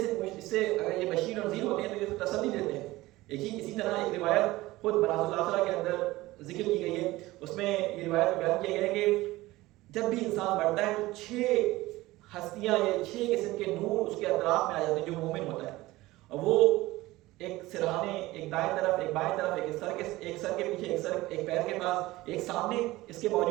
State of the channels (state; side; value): quieter; left; 18.6 dB